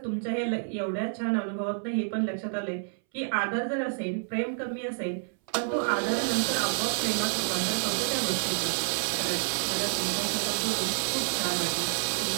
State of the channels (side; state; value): left; silent; 59 dB below the other